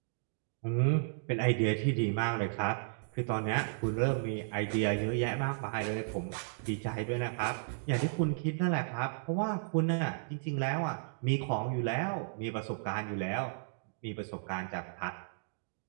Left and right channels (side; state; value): left; silent; digital silence